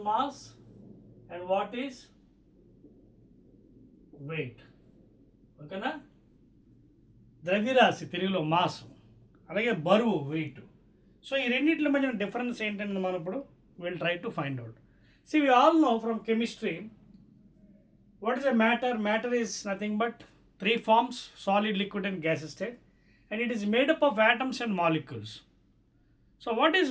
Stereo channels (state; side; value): identical; both; correlation 1.00